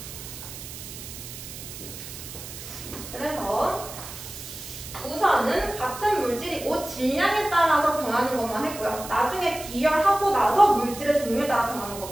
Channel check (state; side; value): noise; right; hiss, 12 dB below the sound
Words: 그래서 우선은 같은 물질이고 질량에 따라서 변하는 것만 했고요. 나중에 비열하고 나서 물질의 종류에 따라 변하는